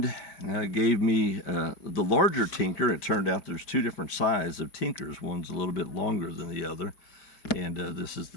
gave me the larger tinker. It turned out there's two different sizes of tinkers. One's a little bit longer than the other, and this is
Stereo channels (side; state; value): right; late; 5.1 ms